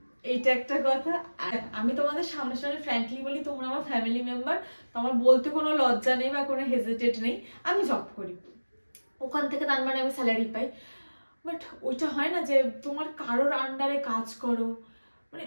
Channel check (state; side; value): inverted; both; correlation -1.00